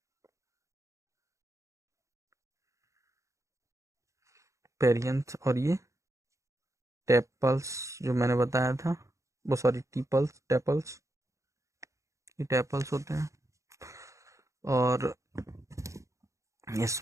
पेरियंथ और ये टेपल्स जो मैंने बताया था, वो सॉरी टीपल्स, टेपल्स, ये टेपल्स होते हैं। और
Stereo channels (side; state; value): left; late; 0.15 ms